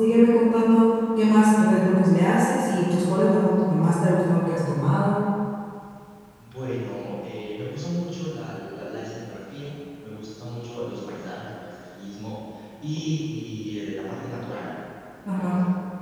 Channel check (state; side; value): identical; both; correlation 1.00